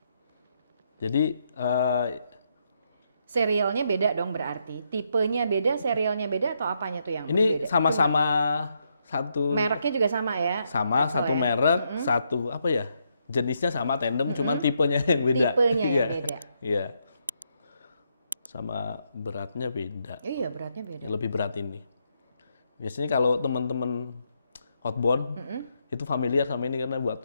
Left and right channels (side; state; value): both; inverted; correlation -0.78